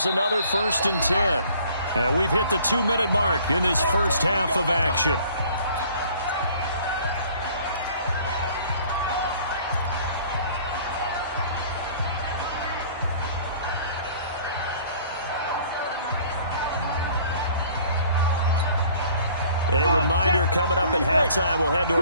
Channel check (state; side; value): inverted; both; correlation -0.54